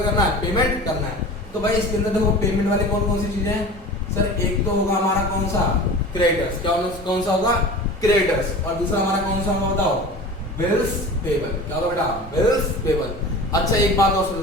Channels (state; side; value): normal; both; correlation 0.37